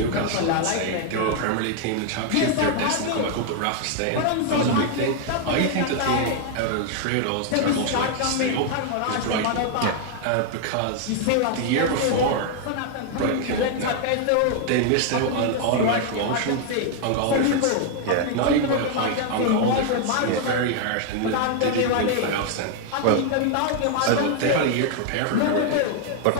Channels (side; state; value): both; different; correlation 0.00